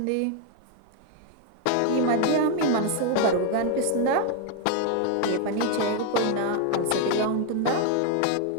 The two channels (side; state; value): both; different; correlation 0.01